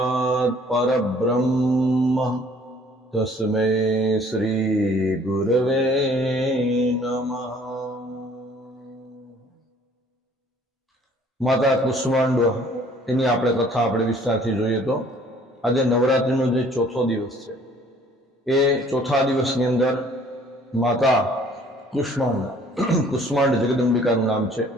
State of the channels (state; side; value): normal; both; correlation 0.56